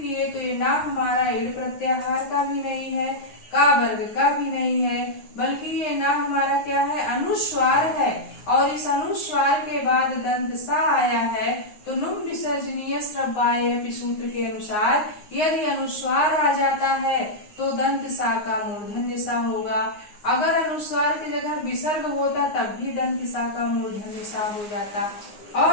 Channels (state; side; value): late; right; 9.6 ms